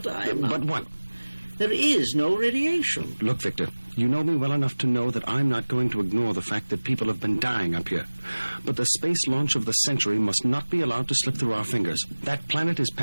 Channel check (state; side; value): inverted; both; correlation -1.00